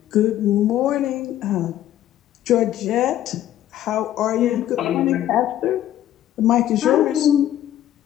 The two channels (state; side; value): quieter; right; 12.4 dB